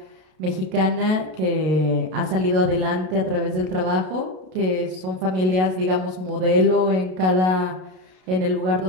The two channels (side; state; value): left; late; 32 ms